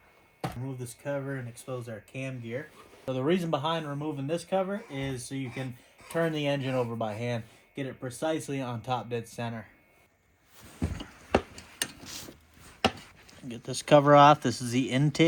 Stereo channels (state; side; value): identical; both; correlation 1.00